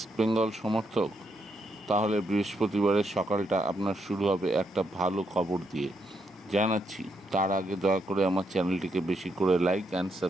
সমর্থক? তাহলে বৃহস্পতিবারের সকালটা আপনার শুরু হবে একটা ভালো খবর দিয়ে জানাচ্ছি। তার আগে দয়া করে আমার চ্যানেলটিকে বেশি করে লাইক অ্যান্ড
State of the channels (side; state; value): both; normal; correlation 0.78